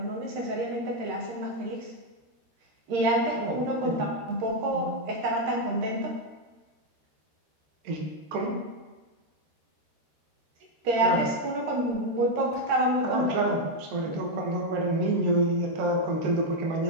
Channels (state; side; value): late; left; 13 ms